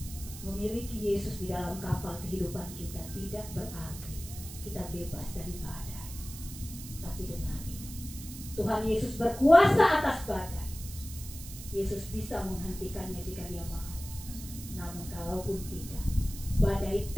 memiliki Yesus di dalam kapal kehidupan kita tidak berarti kita bebas dari badai. Tapi dengan ini, Tuhan Yesus berkuasa atas badai. Yesus bisa menghentikannya jika dia mau. Namun kalaupun tidak, badai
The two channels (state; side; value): noise; right; hiss, 13 dB below the sound